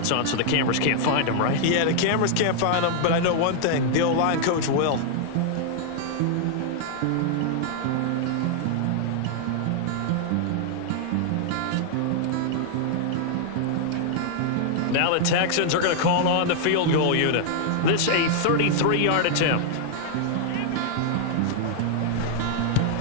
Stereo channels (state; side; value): different; both; correlation 0.00